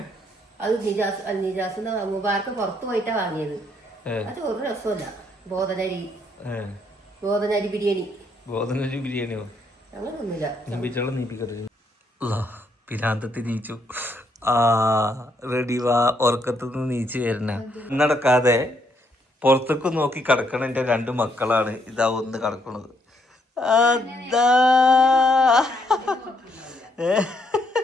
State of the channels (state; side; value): normal; both; correlation 0.73